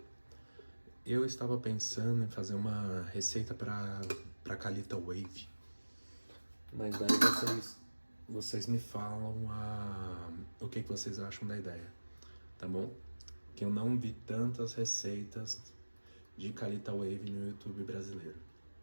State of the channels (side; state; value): both; inverted; correlation -1.00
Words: Eu estava pensando em fazer uma receita para Calita Wave, mas daí vocês me falam o que vocês acham da ideia, tá bom? Que eu não vi tantas receitas de Calita Wave no YouTube brasileiro,